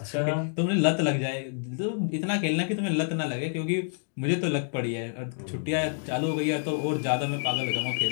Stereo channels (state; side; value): silent; right; digital silence